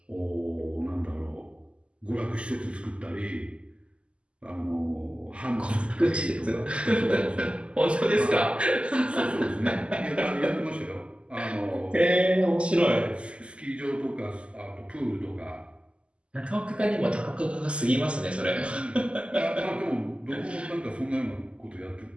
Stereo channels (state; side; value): late; left; 0.054 ms